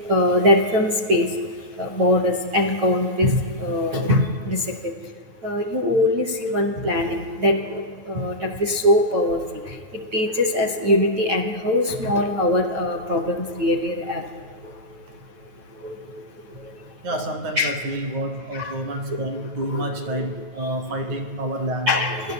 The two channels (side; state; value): left; late; 9.4 ms